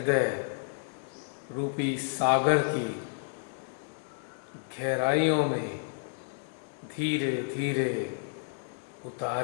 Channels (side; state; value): right; silent; digital silence